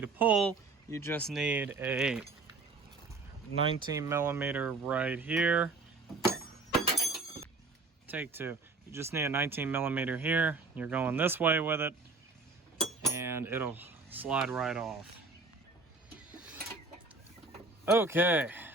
pull. You just need a 19 millimeter right here. Take two. You just need a 19 millimeter here. You're going this way with it, and it'll slide right off. Okay,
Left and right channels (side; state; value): left; quieter; 3.8 dB